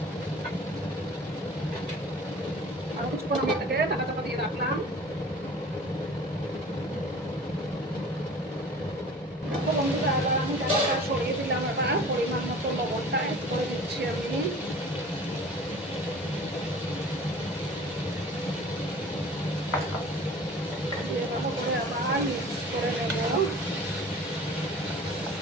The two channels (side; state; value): both; normal; correlation 0.43